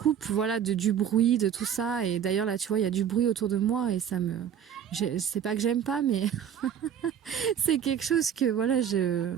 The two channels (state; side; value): quieter; left; 8.8 dB